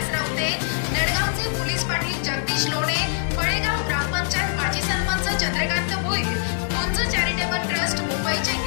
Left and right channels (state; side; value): silent; right; 61 dB below the other